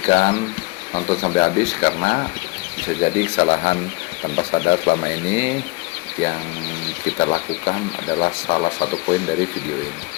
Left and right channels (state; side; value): quieter; right; 24.1 dB